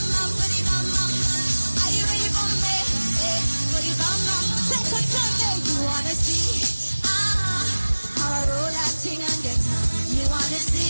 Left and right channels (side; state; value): both; inverted; correlation -1.00